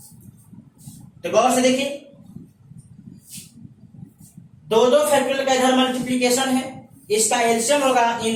तो गौर से देखिए, दो फैक्टोरियल का इधर मल्टीप्लीकेशन है, इसका एलसीएम होगा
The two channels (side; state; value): both; identical; correlation 1.00